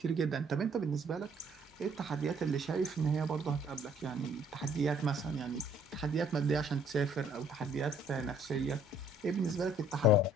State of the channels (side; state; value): both; normal; correlation 0.61